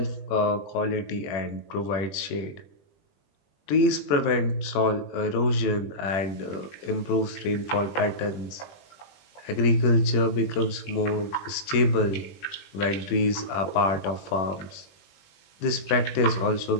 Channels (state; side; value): late; right; 21 ms